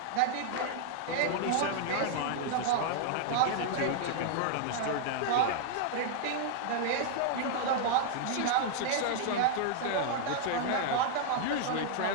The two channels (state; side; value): different; both; correlation -0.01